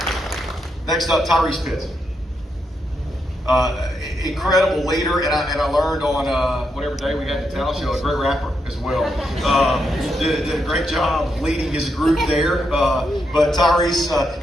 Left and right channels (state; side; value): normal; both; correlation 0.82